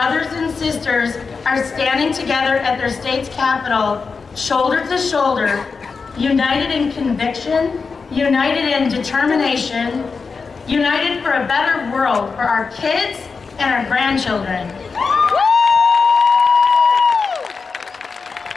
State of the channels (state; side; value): quieter; right; 4.9 dB